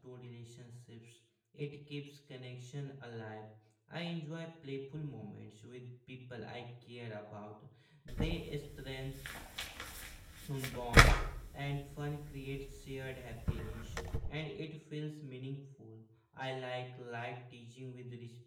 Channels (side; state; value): both; identical; correlation 1.00